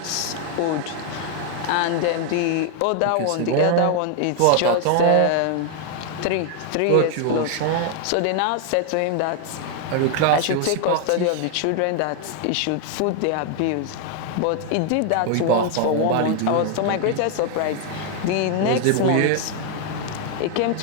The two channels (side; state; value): both; different; correlation 0.00